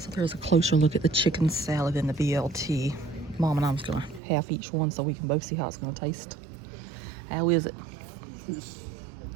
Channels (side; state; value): left; drops out; at 4.2 s